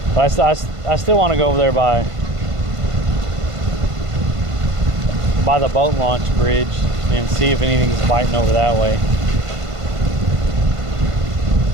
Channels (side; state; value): left; late; 1.5 ms